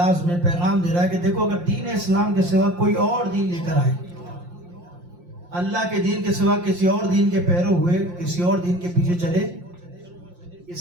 میں پیغام دے رہا ہے کہ دیکھو، اگر دین اسلام کے سوا کوئی اور دین لے کر آئے، اللہ کے دین کے سوا کسی اور دین کے پیرو ہوئے، کسی اور دین کے پیچھے چلے، اس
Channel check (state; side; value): late; left; 5.7 ms